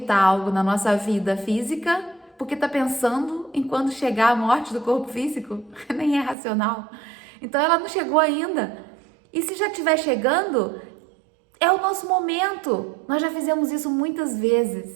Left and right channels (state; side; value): drops out; left; at 6.4 s